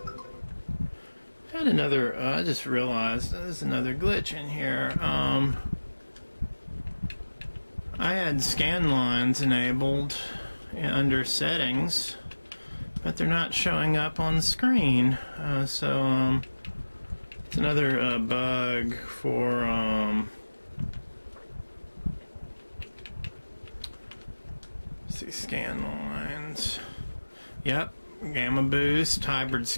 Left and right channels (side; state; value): both; inverted; correlation -1.00